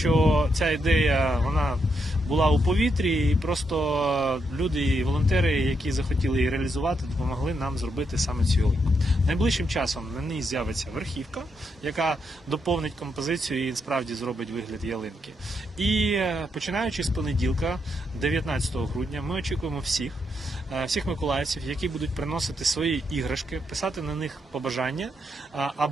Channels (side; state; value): both; normal; correlation 0.80